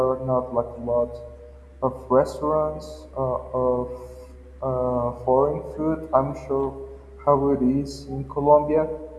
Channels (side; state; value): both; identical; correlation 1.00